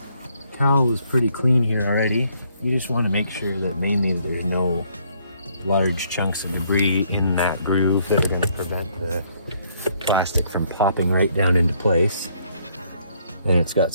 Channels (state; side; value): inverted; both; correlation -0.68